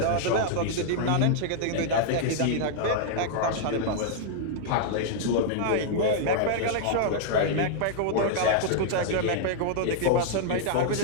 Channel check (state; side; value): different; both; correlation -0.01